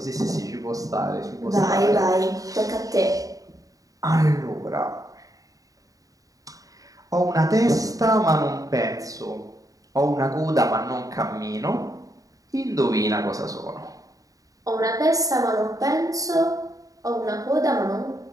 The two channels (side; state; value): left; late; 0.17 ms